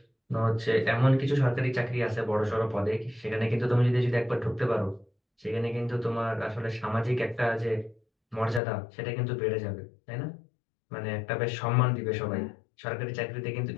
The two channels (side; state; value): right; drops out; at 8.6 s